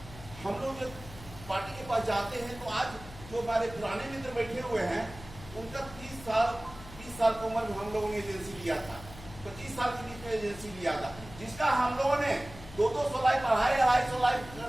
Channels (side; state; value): left; noise; hum, 16 dB below the sound